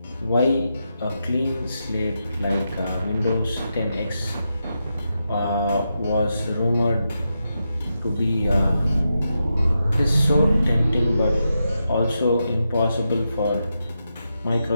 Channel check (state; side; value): inverted; both; correlation -0.87